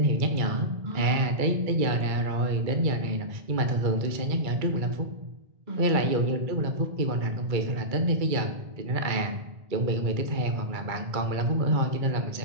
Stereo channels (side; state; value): left; late; 2.3 ms